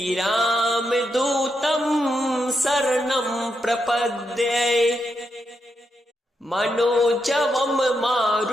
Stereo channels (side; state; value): both; normal; correlation 0.83